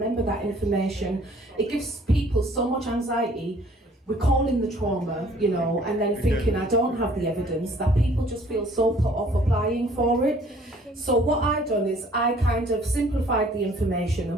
that information? It gives people so much anxiety, recalling the trauma, and then thinking, I don't have the evidence, that people just feel so put off applying for it. So what I done is I kind of simplified the information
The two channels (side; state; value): both; normal; correlation 0.57